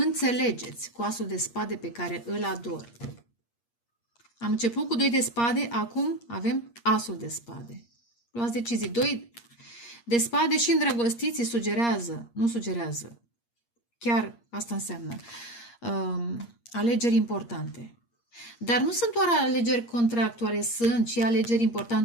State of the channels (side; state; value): right; late; 8.5 ms